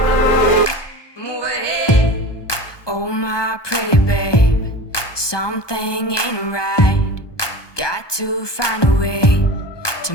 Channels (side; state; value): right; late; 1.2 ms